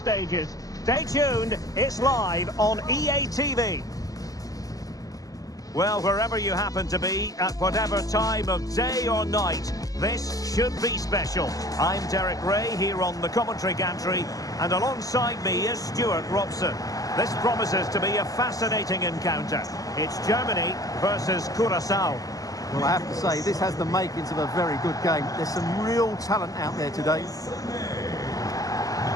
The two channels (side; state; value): right; late; 0.17 ms